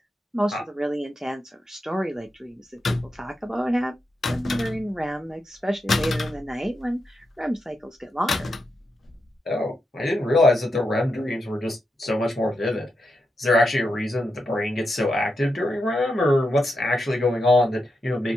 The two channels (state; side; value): normal; both; correlation 0.86